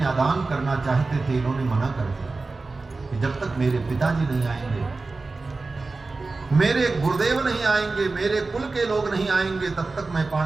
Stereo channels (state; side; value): quieter; left; 3.7 dB